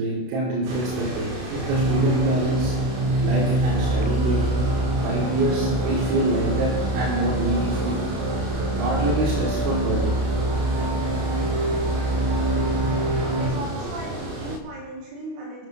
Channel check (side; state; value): left; late; 32 ms